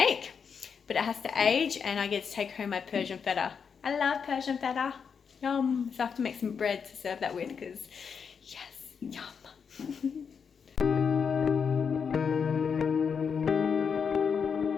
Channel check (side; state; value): right; quieter; 6.4 dB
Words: but it has to age, and I get to take home my Persian feta. I love Persian feta. Yum. So I have to make some bread to serve that with, because yes, yum.